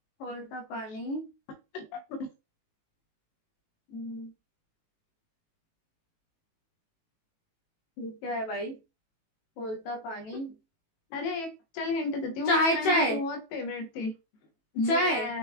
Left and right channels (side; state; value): right; late; 18 ms